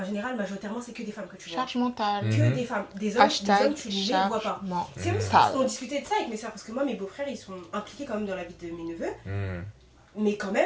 général, majoritairement, c'est que des femmes que tu vois. Charge mentale. Que Mhm. des femmes. Des hommes, Hashtag tu ne les vois charge pas. C'est mentale. aussi parce qu'on discutait de ça avec mes soeurs, parce que moi, mes beaux-frères, ils sont impliqués quand même dans la vie de mes neveux. Hmm. Mais quand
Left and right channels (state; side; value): identical; both; correlation 1.00